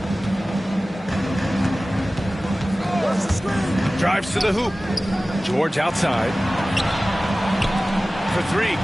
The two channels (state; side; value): normal; both; correlation 0.97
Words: Drives to the hoop. George outside. For 3.